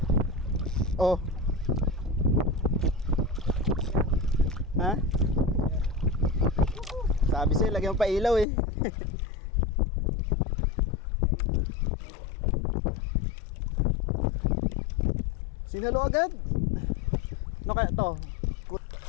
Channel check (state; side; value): drops out; right; at 8.5 s